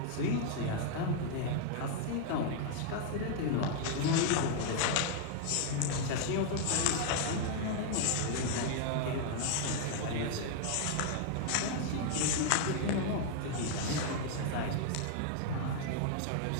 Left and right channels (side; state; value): both; different; correlation 0.00